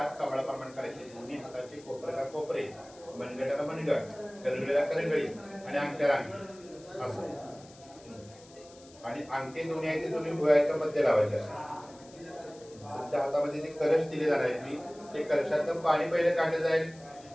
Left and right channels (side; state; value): left; noise; hiss, 23 dB below the sound